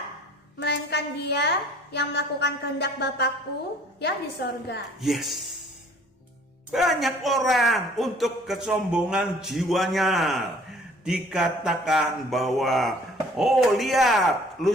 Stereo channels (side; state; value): both; normal; correlation 0.54